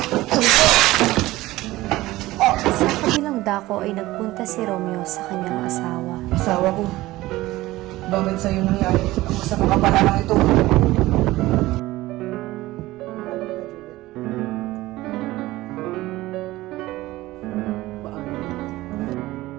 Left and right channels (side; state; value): left; quieter; 17.8 dB